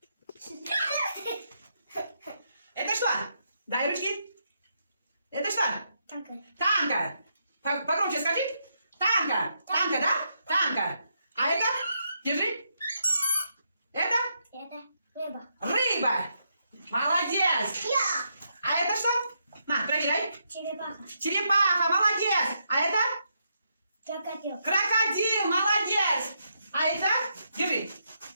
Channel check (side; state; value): both; inverted; correlation -0.79